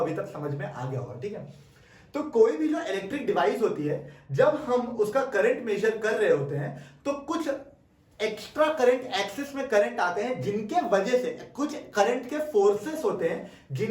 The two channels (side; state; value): both; identical; correlation 1.00